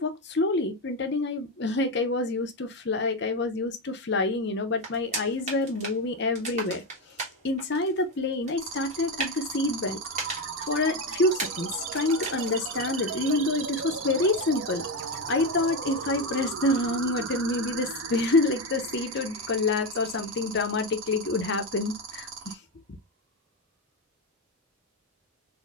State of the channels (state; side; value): normal; both; correlation 0.12